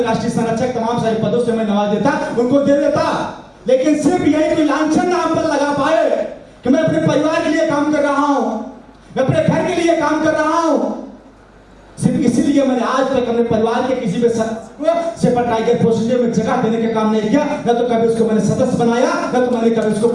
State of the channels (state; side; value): identical; both; correlation 1.00